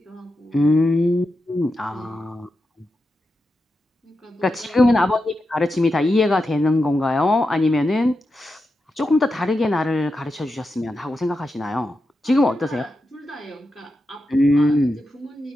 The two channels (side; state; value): both; normal; correlation 0.88